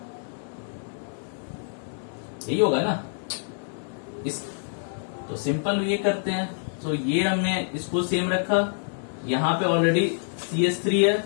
यही होगा ना इस, तो सिंपल ये करते हैं। तो ये हमने इसको सेम रखा, यहां पे ऑलरेडी CH3 है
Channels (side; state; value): right; silent; digital silence